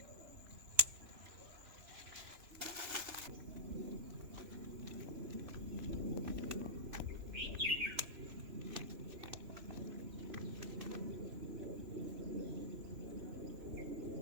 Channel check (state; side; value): late; left; 3.0 ms